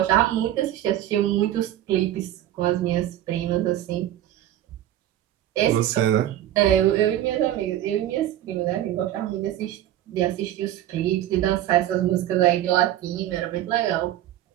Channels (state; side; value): quieter; left; 12.7 dB